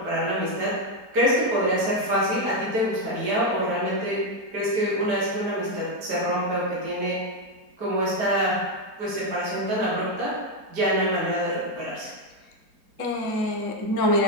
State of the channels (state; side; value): late; left; 4.4 ms